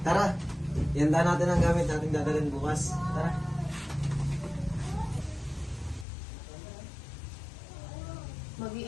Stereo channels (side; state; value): right; drops out; at 6.1 s